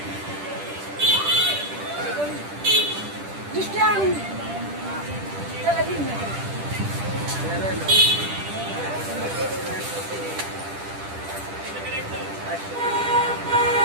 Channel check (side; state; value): left; late; 10 ms